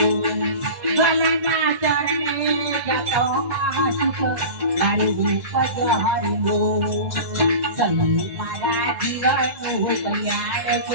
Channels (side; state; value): left; late; 2.0 ms